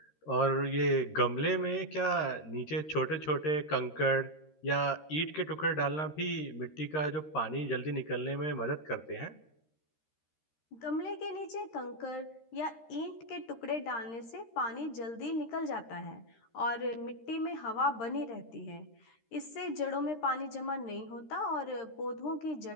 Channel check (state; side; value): late; right; 13 ms